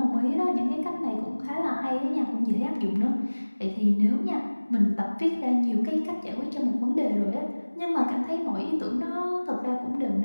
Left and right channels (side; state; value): both; inverted; correlation -1.00